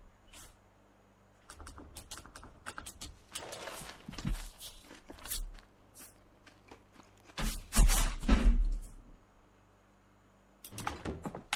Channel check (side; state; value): both; identical; correlation 1.00